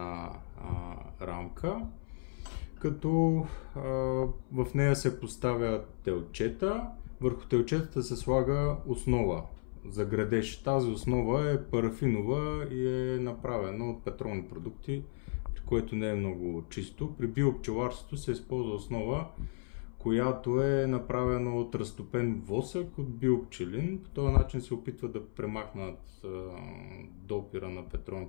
рамка, като в нея се поставя телчета, върху телчетата се слага основа за градеж. Тази основа е парафинова и е направена от петролни продукти, при което не е много чисто. При биопчеларството се използва основа, която е направена от разтопен восък от биопчелин. По този начин се опитва да премахнат допира на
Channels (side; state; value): right; silent; 55 dB below the other